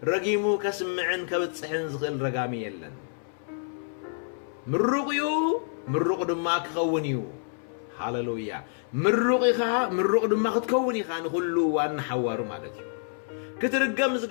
ረጊሙ ከስምዕን ከብፅሕን ዝኽእል ረጋሚ የለን ምሩቕ እዩ ምሩቕ ድማ ክኸውን እዩ ሃሌሉያ ምሩቕ ኢኻ ምሩቕ ድማ ክትከውን ኢኻ ንኹሉ ዋናሓዋሩ ማለት እዩ ክትርገም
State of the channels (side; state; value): right; silent; 60 dB below the other